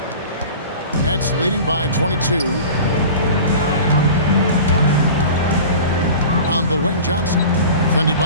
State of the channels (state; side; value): inverted; both; correlation -0.38